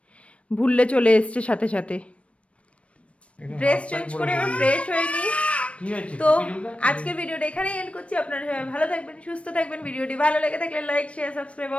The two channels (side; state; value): right; late; 0.062 ms